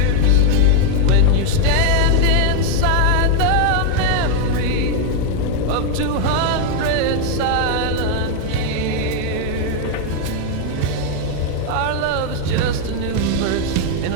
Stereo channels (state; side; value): different; both; correlation 0.01